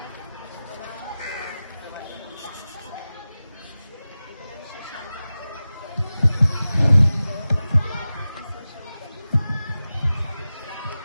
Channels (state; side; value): inverted; both; correlation -0.95